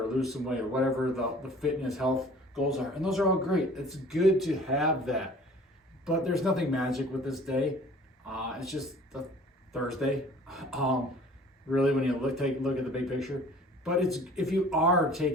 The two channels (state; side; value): normal; both; correlation 0.49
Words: or lose some weight, or whatever the fitness, health goals are. And those are all great. It's good to have that. But there's nothing magic with this day. It's just a Thursday. Really, when you take a look at the big picture. But it's, if you are